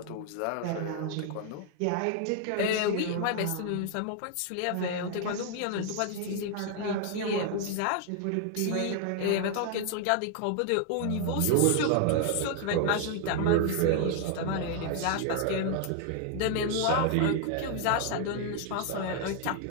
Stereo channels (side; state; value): both; different; correlation 0.00